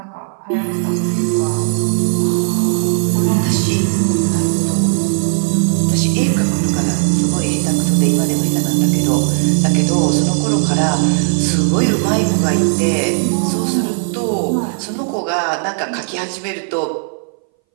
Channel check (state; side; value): silent; left; 64 dB below the other